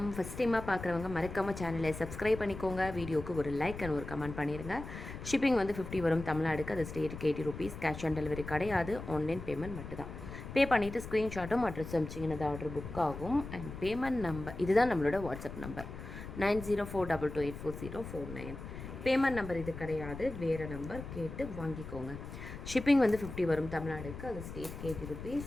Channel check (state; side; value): noise; left; rumble, 10 dB below the sound